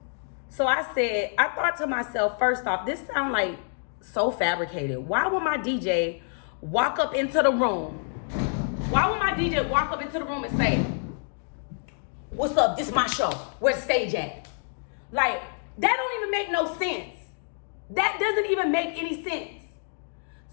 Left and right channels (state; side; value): silent; right; 60 dB below the other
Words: So I thought to myself, first off, this sounds like so fabricated. Why would my DJ walk up into the room? Why would my DJ walk up into the room and say, what's up? This is my show. Where's the stage at? Like, that don't even make no sense. That doesn't even make any sense.